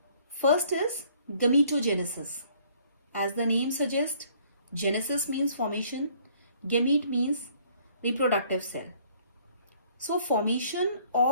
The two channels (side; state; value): both; inverted; correlation -0.60